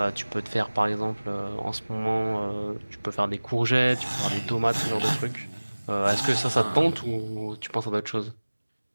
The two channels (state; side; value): inverted; both; correlation -1.00